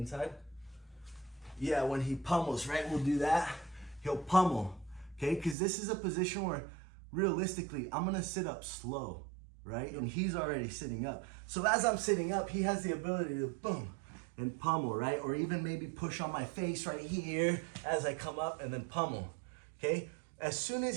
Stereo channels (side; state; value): left; drops out; at 5.6 s